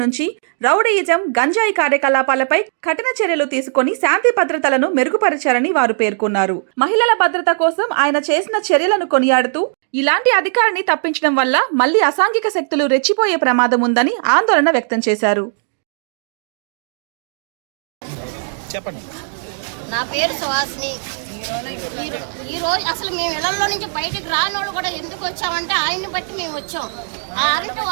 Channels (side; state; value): left; silent; digital silence